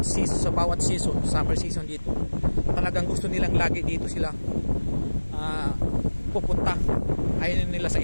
season, summer season dito, talagang gusto nilang lagi dito sila pupunta. Ayaw nila sa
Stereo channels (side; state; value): both; inverted; correlation -1.00